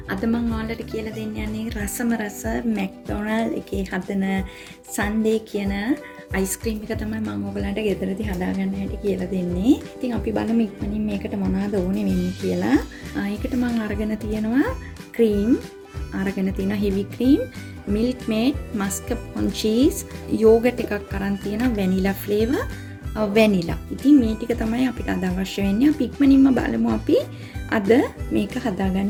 අද මම ඔයාලට කියලා දෙන්න යන්නේ රසම රස McDonald එකේ හදන Sundae කියන අයිස්ක්‍රීම් එක තමයි මම ඔයගලන්ට ගෙදරදී හදාගන්න හැටි කියලා දෙන්නේ. ඉතින් අපි බලමු ඉක්මනින් මේකට මොනවද ඕනේ වෙන්නේ කියලා. ඒකට මම අරගෙන තියෙනවා cream, අරගෙන තියෙනවා heavy cream, milk maid, mascarpone cheese, yogurt එකක් අරන් තියෙනවා vanilla flavor, vanilla. ඉතින් මේ ටික තමයි අපිට අද අවශ්‍ය වෙන්නේ. අපි ඉක්මනින්ම බලමු අපි අද මේක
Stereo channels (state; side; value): identical; both; correlation 1.00